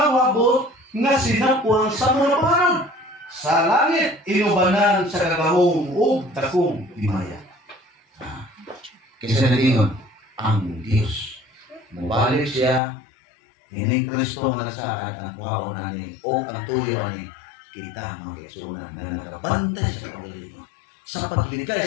wabot nga sinapuan sa mga panahon. Sa langit inubanan sa kagahom ug takong himaya. Kasi nalingon, ang Diyos. Mubalik siya, kining Kristo nga nasaad ang kwaon ani o ang tuyo ani kita mga kaigsunan na nagabantay sa kagalingon sa paglikay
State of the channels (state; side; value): drops out; right; at 12.8 s